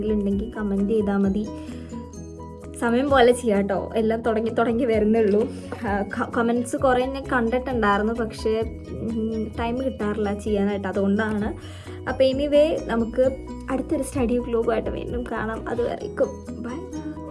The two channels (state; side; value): identical; both; correlation 1.00